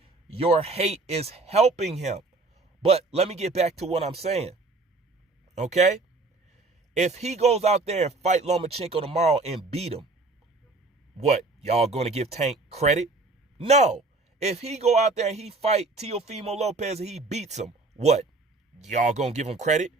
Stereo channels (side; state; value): left; quieter; 3.4 dB